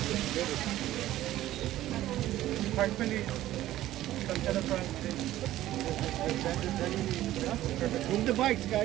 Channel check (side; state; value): left; quieter; 14.4 dB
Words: Park police. Come to the front. Perfect. Move the bikes,